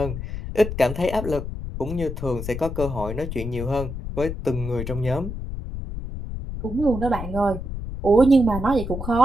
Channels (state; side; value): noise; left; rumble, 6 dB below the sound